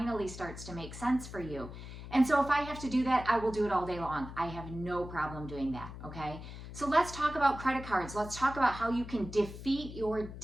starts to make sense for you. And so if I have to do that, I will do it all day long. I have no problem doing that, okay? So let's talk about credit cards. Let's talk about how you can defeat your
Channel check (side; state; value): left; noise; hum, 12 dB below the sound